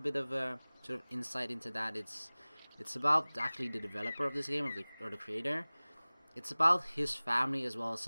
of a sort of insight into that. It's about actually the developer of this game, or the creator. It's about his family as well as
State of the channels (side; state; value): both; inverted; correlation -1.00